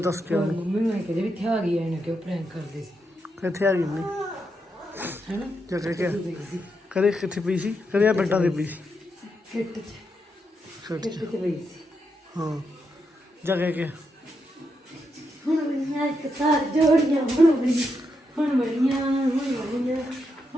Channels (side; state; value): both; normal; correlation 0.83